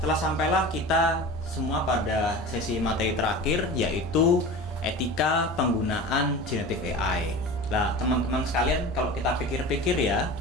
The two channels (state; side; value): normal; both; correlation 0.34